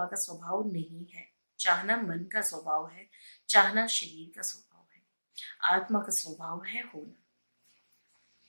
का स्वभाव नहीं है, चाहना मन का स्वभाव है, चाहना शरीर का स्वभाव है। आत्मा का स्वभाव है होना।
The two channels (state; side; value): inverted; both; correlation -1.00